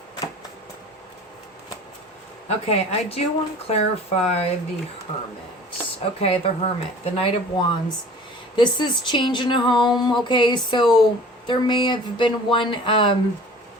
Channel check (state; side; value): normal; both; correlation 0.45